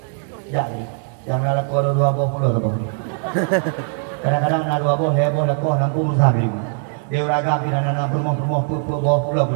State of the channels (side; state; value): left; silent; 56 dB below the other